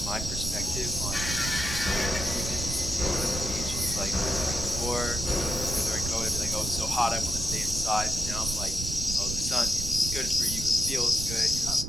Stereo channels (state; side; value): noise; right; rumble, 5 dB below the sound